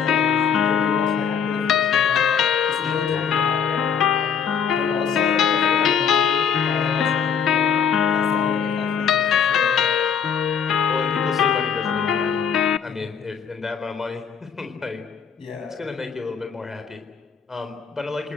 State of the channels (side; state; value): right; quieter; 7.1 dB